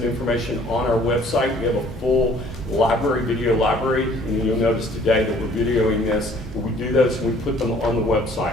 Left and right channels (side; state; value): both; normal; correlation 0.56